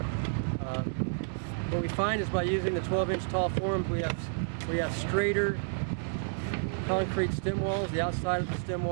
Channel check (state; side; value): silent; left; digital silence